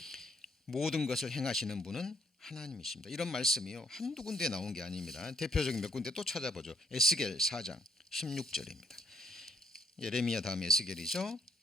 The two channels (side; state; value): both; normal; correlation 0.70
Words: 모든 것을 행하시는 분은 하나님이십니다. 이런 말씀이요, 한두 군데 나온 게 아닙니다. 대표적인 몇 군데 또 찾아보죠. 에스겔 4장 16절입니다. 예레미야 다음 에스겔이죠.